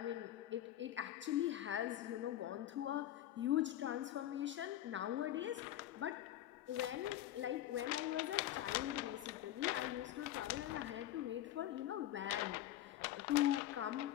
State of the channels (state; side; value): quieter; right; 12.9 dB